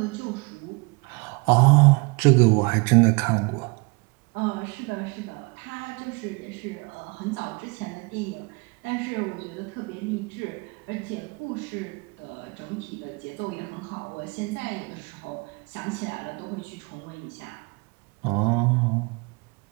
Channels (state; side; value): quieter; left; 29.0 dB